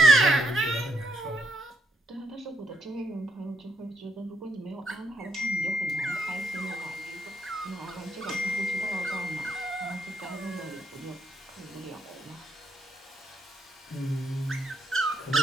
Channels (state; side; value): normal; both; correlation 0.76